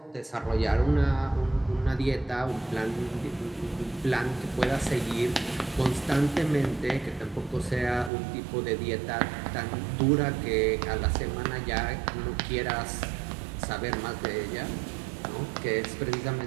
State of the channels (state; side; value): drops out; left; at 8.1 s